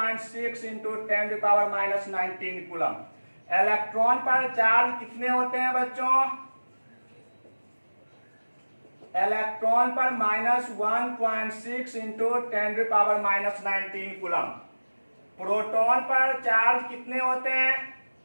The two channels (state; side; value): inverted; both; correlation -1.00